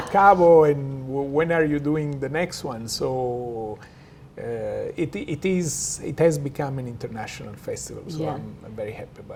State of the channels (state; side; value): identical; both; correlation 1.00